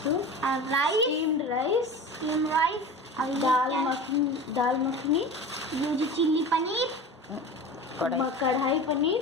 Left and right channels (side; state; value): both; normal; correlation 0.33